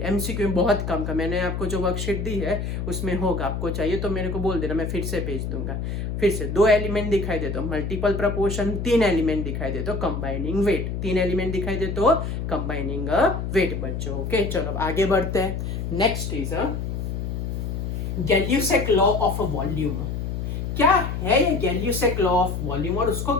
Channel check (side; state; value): left; noise; hum, 3 dB below the sound